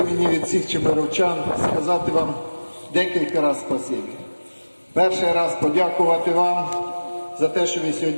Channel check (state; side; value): inverted; both; correlation -1.00